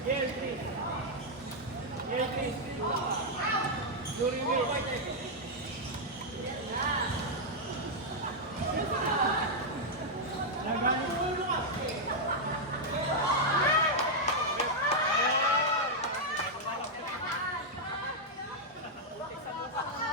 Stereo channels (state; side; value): normal; both; correlation -0.03